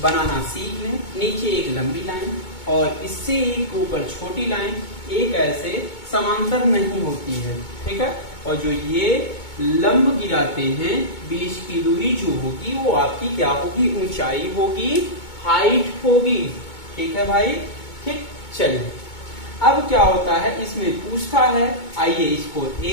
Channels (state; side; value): late; right; 2.2 ms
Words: बनाना सीख लें। नीचे एक लंबी लाइन और इससे एक ऊपर छोटी लाइन, एक ऐसे समांतर नहीं होती है। ठीक है, और जो ये लंब गिराते हैं, बीच की दूरी जो होगी वो आपकी क्या होगी, ऊंचाई होगी, हाइट होगी। ठीक है भाई। ठीक, चलिए अब क्या होता है, इसमें पूछता है, आइए इसको